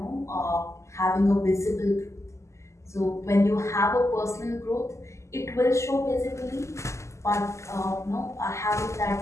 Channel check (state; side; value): late; right; 0.14 ms